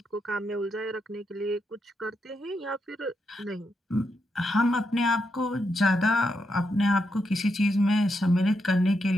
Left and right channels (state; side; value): normal; both; correlation 0.83